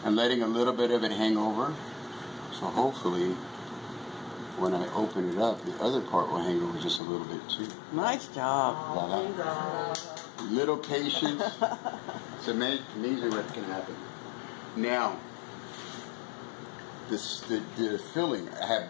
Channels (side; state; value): right; drops out; at 7.0 s